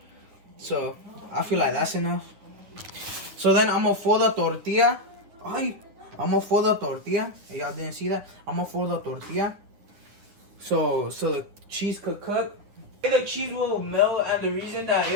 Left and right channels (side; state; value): left; late; 9.7 ms